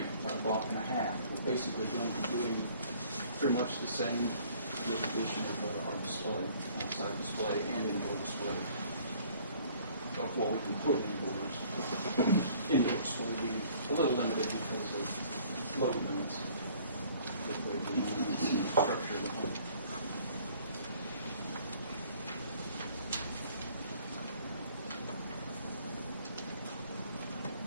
about a block and a half. We're basically going to be doing pretty much the same with the addition of our display, outside display and indoor display of what we can put indoors. Indoors will be a little limited because of load limits, the way we structure the home.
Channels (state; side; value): inverted; both; correlation -0.56